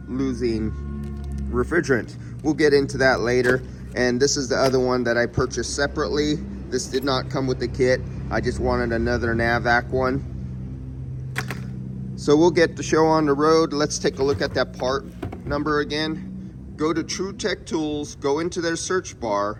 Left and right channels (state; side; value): identical; both; correlation 1.00